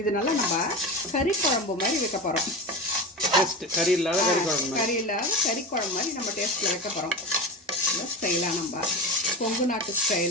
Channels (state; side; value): normal; both; correlation 0.25